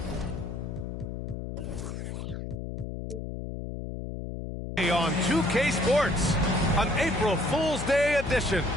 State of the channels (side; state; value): left; noise; hum, 6 dB below the sound